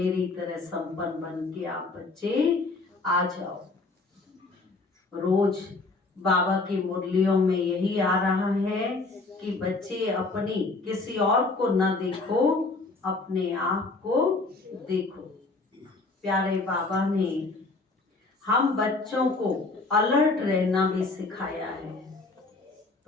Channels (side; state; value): right; quieter; 3.5 dB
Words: तरह संपन्न बन के आप बच्चे आ जाओ। रोज बाबा की मुरलियों में यही आ रहा है कि बच्चे अपनी, किसी और को ना देखो, अपने आप को देखो। प्यारे बाबा ने हम बच्चों को अलर्ट रहना भी सिखाया है।